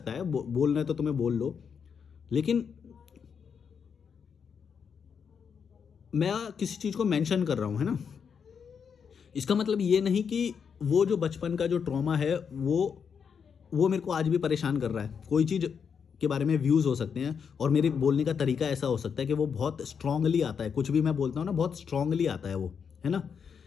है, बोलना है तो तुम्हें बोल लो, लेकिन मैं किसी चीज़ को मेंशन कर रहा हूँ, है ना। इसका मतलब ये नहीं कि वो जो बचपन का जो ट्रॉमा है वो मेरे को आज भी परेशान कर रहा है। कोई चीज़ के बारे में व्यूज़ हो सकते हैं और मेरे बोलने का तरीका ऐसा हो सकता है कि वो बहुत स्ट्रांगली आता है। कुछ भी मैं बोलता हूँ ना, बहुत स्ट्रांगली आता है वो, है ना।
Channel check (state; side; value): quieter; right; 6.7 dB